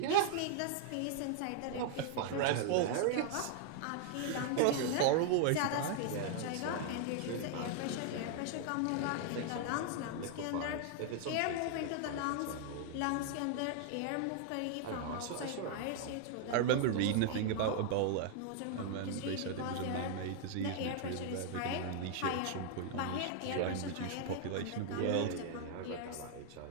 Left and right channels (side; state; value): both; different; correlation 0.00